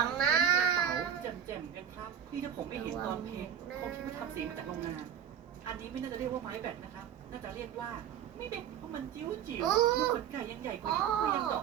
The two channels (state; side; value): quieter; left; 8.9 dB